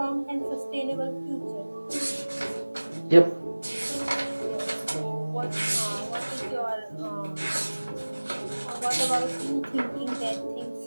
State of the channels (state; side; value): inverted; both; correlation -1.00